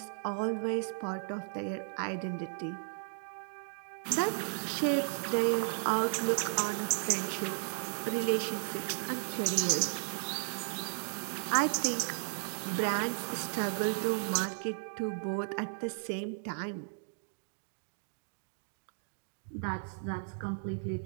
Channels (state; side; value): silent; left; digital silence